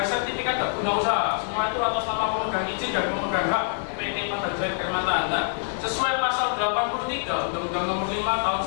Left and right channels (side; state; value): right; silent; digital silence